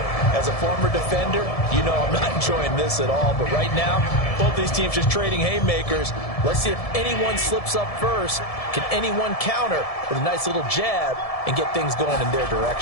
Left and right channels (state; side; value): late; right; 1.7 ms